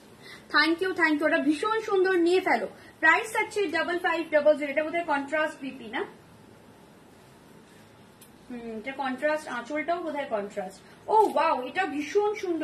থ্যাংক ইউ থ্যাংক ইউ, ওটা ভীষণ সুন্দর, নিয়ে ফেলো। প্রাইস যাচ্ছে 5500। এটা বোধহয় কন্ট্রাস্ট বিপি না, এটা কন্ট্রাস্ট, আঁচলটাও বোধহয় কন্ট্রাস্ট। ও ওয়াও, এটা ভীষণ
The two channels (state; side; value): identical; both; correlation 1.00